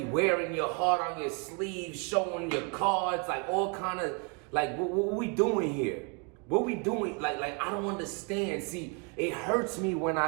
wearing your heart on your sleeve, showing your cards, like all kind of, like what we doing here? What we doing? Like I don't understand. See, it hurts me when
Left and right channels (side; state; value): left; quieter; 33.7 dB